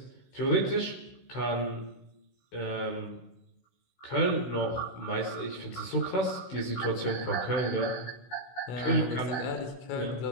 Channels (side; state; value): right; late; 16 ms